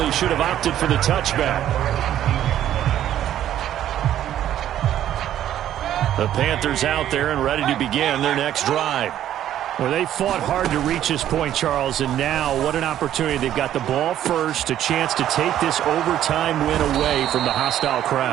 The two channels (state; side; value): quieter; left; 11.6 dB